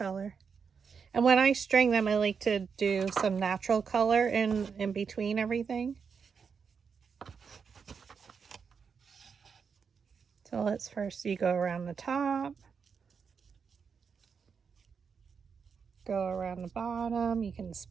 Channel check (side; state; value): left; quieter; 6.1 dB